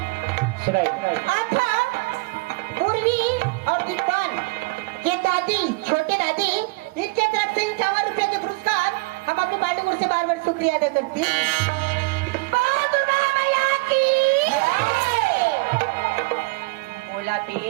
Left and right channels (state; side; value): quieter; left; 27.0 dB